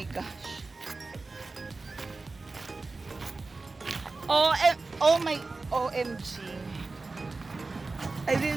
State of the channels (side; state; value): left; quieter; 3.7 dB